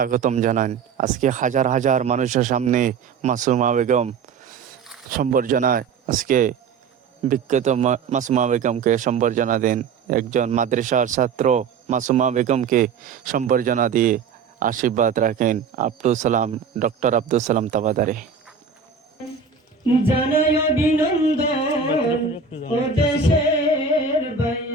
জানান। আজকে হাজার হাজার মানুষের সামনে মাসুমা বেগম সম্বর্ধনায় আজকে বিখ্যাত মাসুমা বেগমকে সম্বর্ধনা দেন। একজন মাদ্রাসার ছাত্র মাসুমা বেগমকে সম্বর্ধনা দিয়ে আশীর্বাদ রাখেন ডক্টর আব্দুল সালাম তাবাদারে। জানাই অভিনন্দন ও দেশের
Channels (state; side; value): quieter; left; 5.8 dB